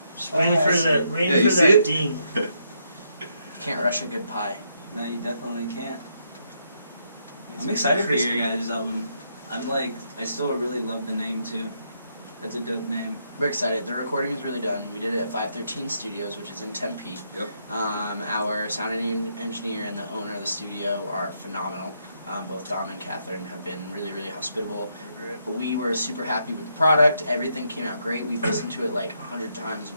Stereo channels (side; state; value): both; inverted; correlation -0.77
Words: Just waiting for Yeah, waiting you for see that it? ding. Can't rush a good pie. No, you definitely can't. I'm excited for your guys' album. I still really love the name too. That's a dope name. We're excited. The recording is really done. We did it at 513 Studios, which is in Tempe. Yep. Our sound engineer and the owner of the studio are phenomenal. Both Dom and Catherine have been really, really hospitable. We were super happy with the product. Everything came out great. We've listened to it like 100 times.